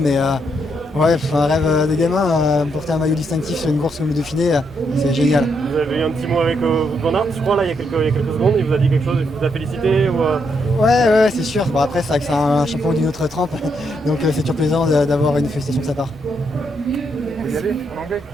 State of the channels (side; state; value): both; normal; correlation 0.78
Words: mais ouais, un rêve de gamin, porter un maillot distinctif sur une course comme le Dauphiné, c'est génial. Vous avez eu un petit mot avec Wout van Aert, je crois, là, il y a quelques secondes, il vous a dit quelque chose, il vous a félicité ou Ouais, c'est sûr. Bon, après, c'est vrai que c'est un champion d'une autre trempe, donc c'est toujours plaisant d'avoir une félicitation de sa part. Vous y allez, en anglais?